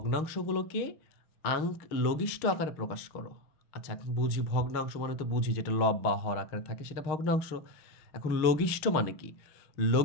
লঘিষ্ঠ আকারে প্রকাশ করো। আচ্ছা, এখন বুঝি ভগ্নাংশ মানে তো বুঝি যেটা লব বা হর আকারে থাকে সেটা ভগ্নাংশ। এখন লঘিষ্ঠ মানে কি?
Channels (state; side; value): late; right; 6.4 ms